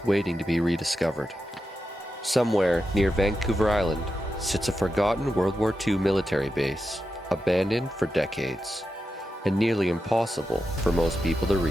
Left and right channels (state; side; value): normal; both; correlation 0.89